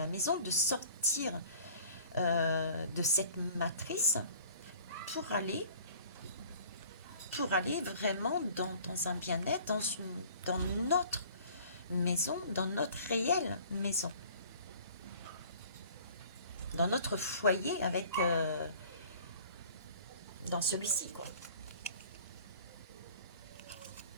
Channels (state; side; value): inverted; both; correlation -0.49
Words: maison, de sortir de cette matrice pour aller vraiment dans un bien-être, dans notre maison, dans notre réelle maison, dans notre foyer avec dans celui-ci, quoi.